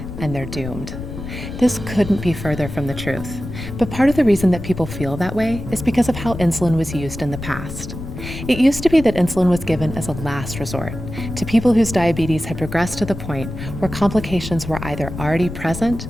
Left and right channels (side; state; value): left; noise; rumble, 9 dB below the sound